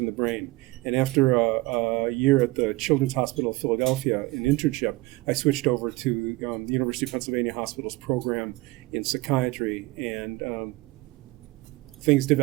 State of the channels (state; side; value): quieter; left; 20.4 dB